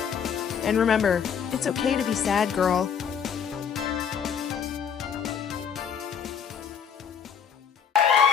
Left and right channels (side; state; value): right; quieter; 7.4 dB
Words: And remember, it's okay to be sad, girl.